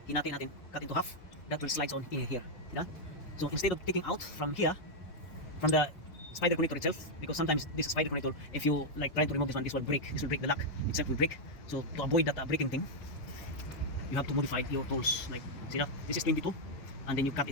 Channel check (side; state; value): right; late; 5.5 ms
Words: hinati natin, cut into half. That will slides on in here. You know? So instead of taking out from here, from the spider connector itself, because sometimes this spider connector, if you like try to remove this one, this will break. This will break the lock itself will break. So to avoid that breaking thing, you have to modify your tools. Like see that this is 22, and then you cut